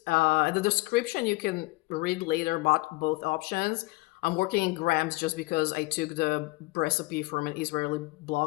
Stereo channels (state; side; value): quieter; right; 23.4 dB